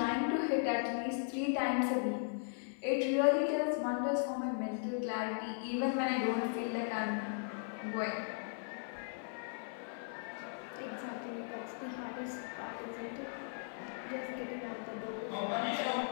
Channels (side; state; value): right; silent; 53 dB below the other